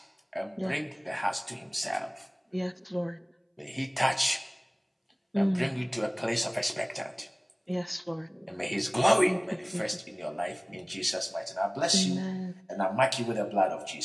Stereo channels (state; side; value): identical; both; correlation 1.00